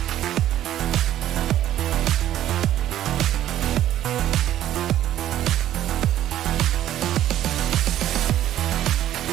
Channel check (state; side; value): quieter; left; 12.4 dB